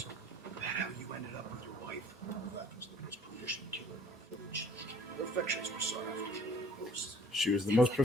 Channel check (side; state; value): both; normal; correlation 0.55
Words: That how you ended up with your wife? That was the most proficient killer in our village. Her affections were sought after most. She was the most